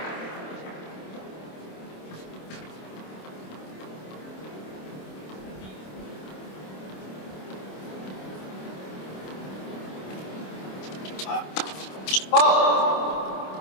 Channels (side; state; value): right; late; 26 ms